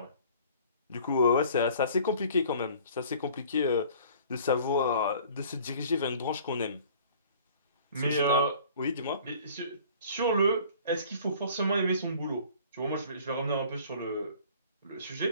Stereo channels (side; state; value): both; inverted; correlation -0.50